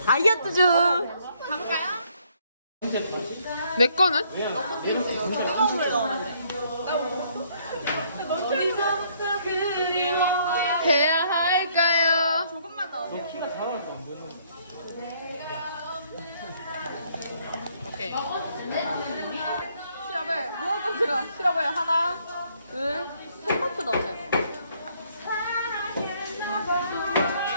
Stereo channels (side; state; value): both; inverted; correlation -0.67